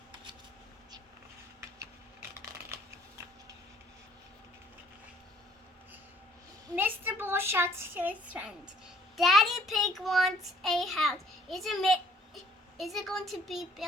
Mr. Bull shouts to his friends. Daddy Pig wants a house. Is it going to be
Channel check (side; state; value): both; normal; correlation 0.59